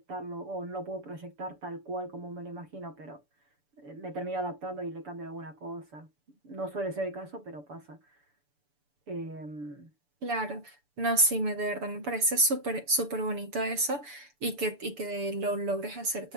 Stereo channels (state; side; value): late; left; 6.9 ms